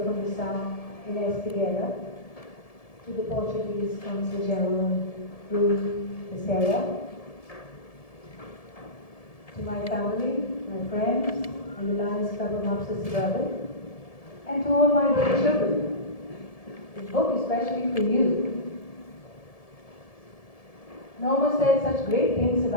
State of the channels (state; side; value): late; right; 1.7 ms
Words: Comissão in Espi, to the Portuguese Consul General Ruth Becerra, to my family, my friends, and the Lions Club of Mopsa Suburban, and to all my little children. This book is especially for you. Norma said such great things